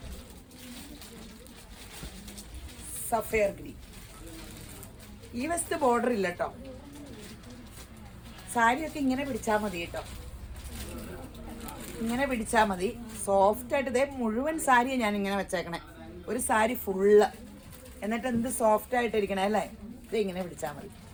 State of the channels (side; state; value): both; identical; correlation 1.00